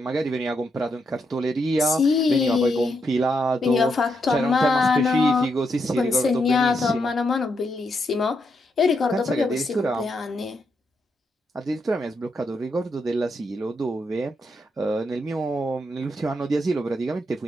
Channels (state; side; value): normal; both; correlation 0.81